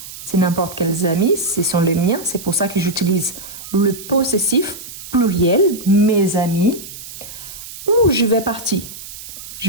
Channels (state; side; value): noise; right; hiss, 13 dB below the sound